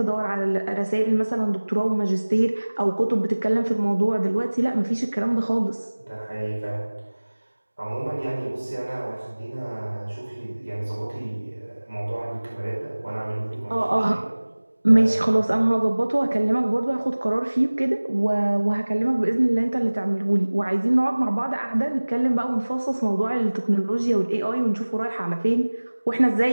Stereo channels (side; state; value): both; inverted; correlation -1.00